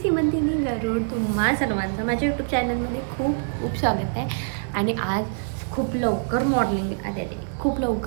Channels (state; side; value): silent; left; 62 dB below the other